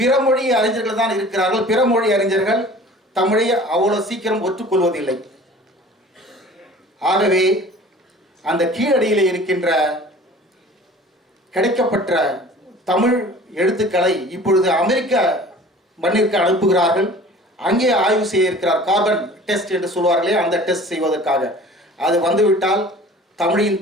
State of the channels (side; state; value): both; normal; correlation 0.45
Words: மொழி அறிஞர்கள் தான் இருக்கிறார்கள். பிற மொழி அறிஞர்கள் தமிழை அவ்வளவு சீக்கிரம் ஒற்றுக்கொள்வதில்லை. ஆகவே அந்த கீழடியில் இருக்கின்ற கிடைக்கப்பட்ட தமிழ் எழுத்துக்களை இப்பொழுது அமெரிக்க மண்ணிற்கு அனுப்புகிறார்கள். அங்கே ஆய்வு செய்ய இருக்கிறார். கார்பன் டெஸ்ட் என்று சொல்வார்களே, அந்த டெஸ்ட் செய்வதற்காக. அது வந்துவிட்டால் தமிழின்